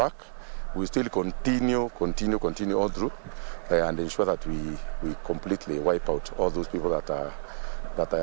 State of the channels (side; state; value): left; silent; 59 dB below the other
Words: We still continue all through, and ensure that we completely wipe out all those people that